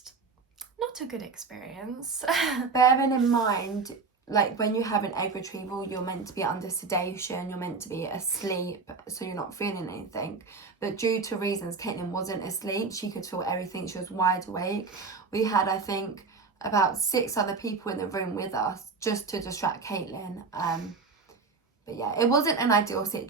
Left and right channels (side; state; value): left; quieter; 4.5 dB